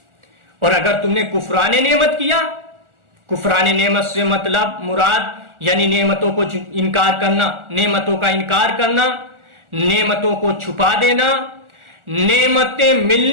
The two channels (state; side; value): late; left; 1.4 ms